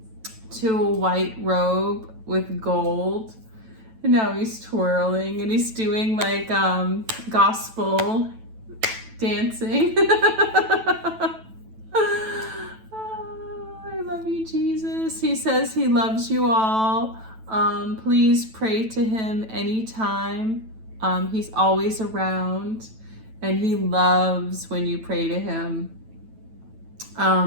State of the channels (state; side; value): late; left; 9.1 ms